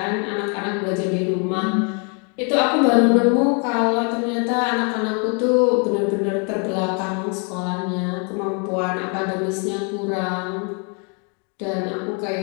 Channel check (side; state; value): right; quieter; 37.3 dB